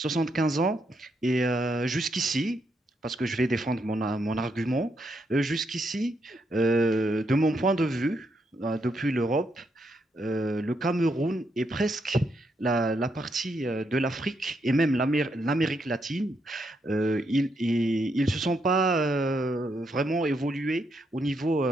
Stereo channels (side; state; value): both; normal; correlation 0.78